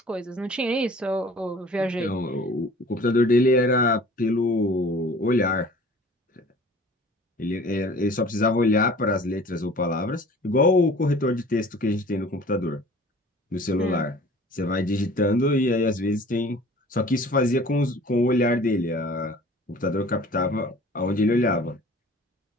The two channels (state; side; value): normal; both; correlation 0.47